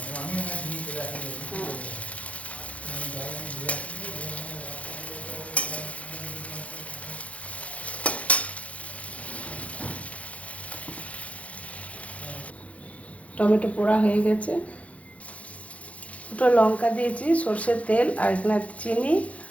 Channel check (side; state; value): right; late; 0.065 ms